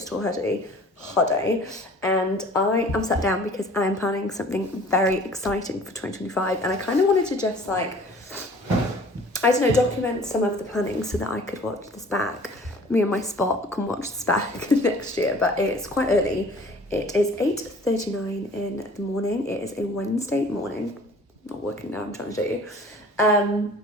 hoodie, and I am sat down because I am planning something very exciting for 2025, and I kind of wanted to just like, I don't know, document some of the planning so that I could watch this back. Me and my spot can watch this back next year, but it's quite early. It is 8:39 in the morning. It is a Wednesday morning. I'm not working now, I'm trying to show you.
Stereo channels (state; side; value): normal; both; correlation 0.49